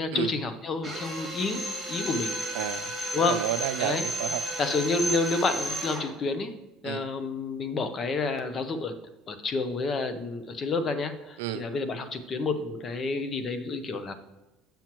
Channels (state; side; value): normal; both; correlation 0.54